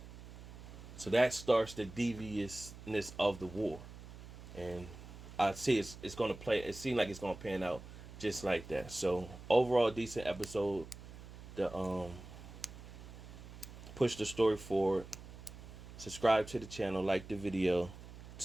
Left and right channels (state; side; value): noise; right; hum, 15 dB below the sound